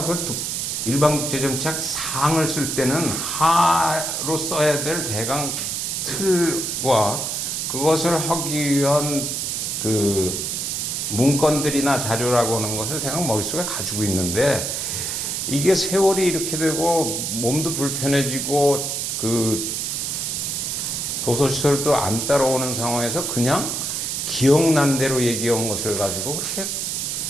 그 일반국제정치학 상을 쓸 때는 하로 써야 될 대강 틀과 그것을 하기 위한 그 문건들이나 자료라고 하는 것을 대강 머릿속에 가지고 있는데, 이게 세월이 이렇게 되고 몸도 불편해지고 그 도서시설도 안 따라오는 상황에서 그냥 기억난 대로 얘기한 것을 가지고 그렇게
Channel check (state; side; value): noise; right; hiss, 2 dB below the sound